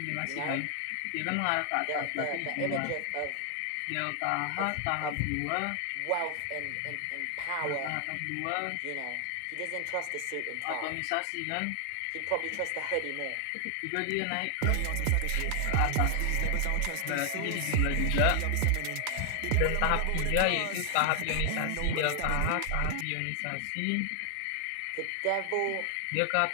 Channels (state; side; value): different; both; correlation 0.00